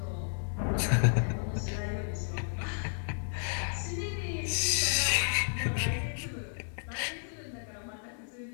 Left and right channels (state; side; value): silent; right; digital silence